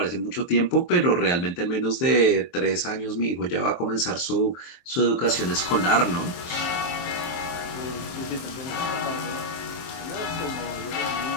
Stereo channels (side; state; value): right; late; 23 ms